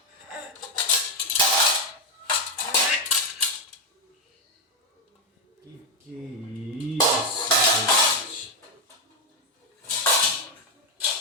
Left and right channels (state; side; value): normal; both; correlation 0.05